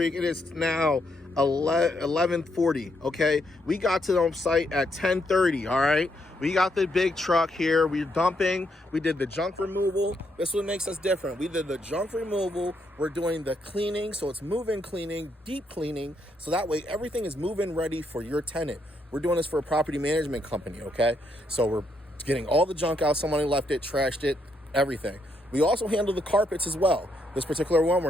It is now 11:40, okay? We got to the site at 10:30, all right? We got the big truck here. We're dumping. We did the junk removal. This is what makes us different. We did the junk removal. We're doing the cleaning, so it's move-in cleaning, deep cleaning, so that way everything is move-in ready for your tenant. We're doing this for a property management company, okay? So we're getting all the junk out. Someone left it, trashed it, everything. We also handle the carpets as well. This particular one, we're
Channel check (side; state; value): both; normal; correlation 0.77